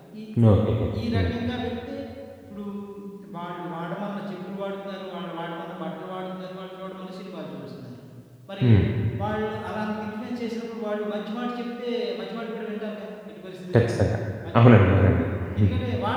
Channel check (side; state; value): both; identical; correlation 1.00